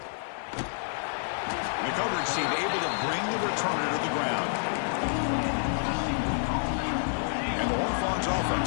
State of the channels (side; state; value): right; silent; 57 dB below the other